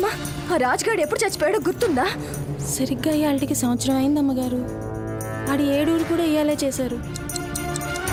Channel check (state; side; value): identical; both; correlation 1.00